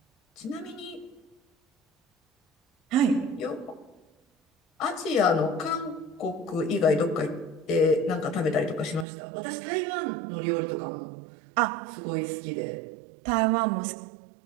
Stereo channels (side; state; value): left; drops out; at 9.1 s